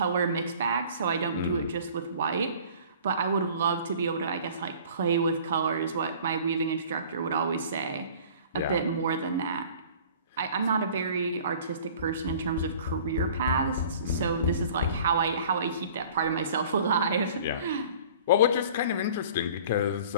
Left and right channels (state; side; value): inverted; both; correlation -0.47